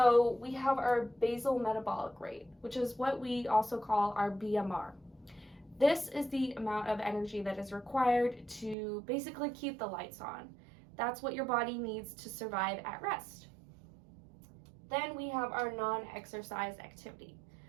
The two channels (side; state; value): left; drops out; at 8.8 s